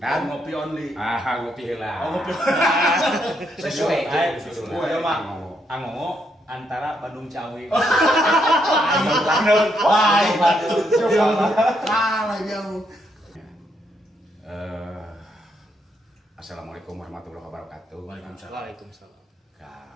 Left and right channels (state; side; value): normal; both; correlation 0.77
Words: dan ngopi only. ngopi heula. Ngopi. Sesuai. Ayo Mang. Angongo antara Bandung Ciawi. Wah, batu. Kalah jauh. Assalamualaikum warahmatullahi wabarakatuh. Waalaikumsalam.